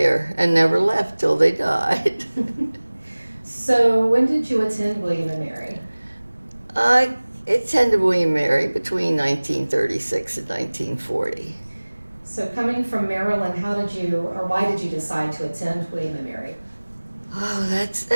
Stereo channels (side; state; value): both; inverted; correlation -1.00